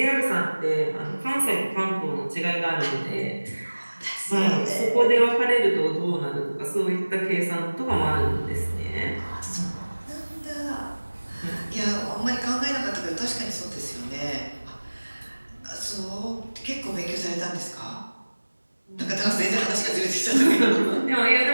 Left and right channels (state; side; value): inverted; both; correlation -1.00